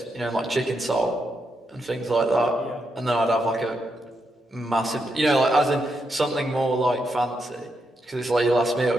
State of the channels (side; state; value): both; normal; correlation 0.82